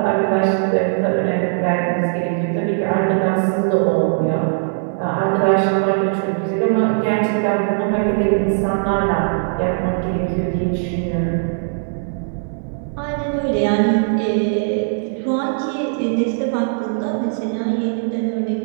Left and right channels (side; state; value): left; silent; digital silence